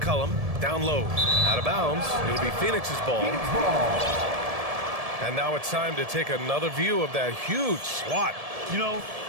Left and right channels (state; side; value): late; left; 1.7 ms